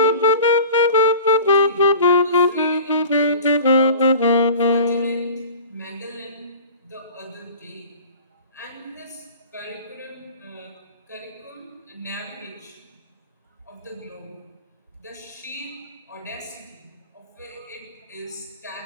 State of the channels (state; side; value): inverted; both; correlation -0.41